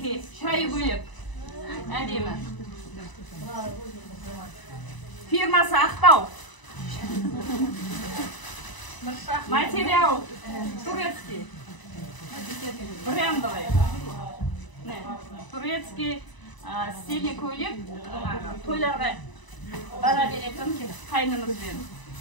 шай бөлек. Әдемі. Фирмасы Ақтау. Материал турецкий. Брендовый. Турецкий стильный көйлек. Тойларға бара беретін қайнымызбен.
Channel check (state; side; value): late; right; 1.0 ms